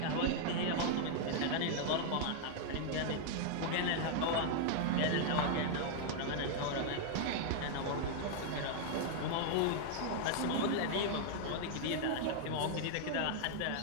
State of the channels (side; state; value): both; different; correlation -0.01